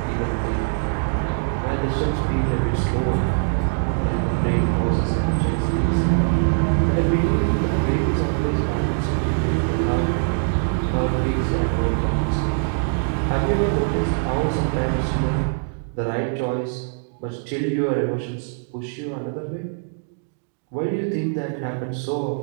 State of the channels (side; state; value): left; silent; digital silence